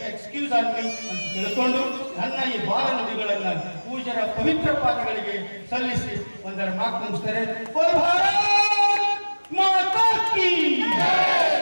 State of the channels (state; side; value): inverted; both; correlation -1.00